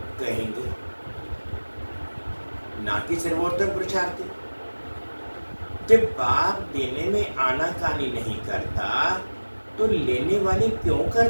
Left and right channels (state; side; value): inverted; both; correlation -1.00